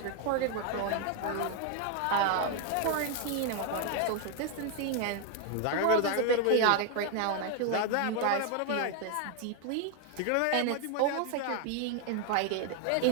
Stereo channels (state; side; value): different; both; correlation 0.00